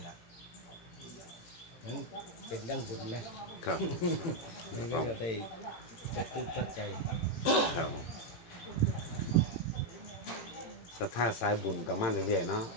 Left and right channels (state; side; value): late; right; 18 ms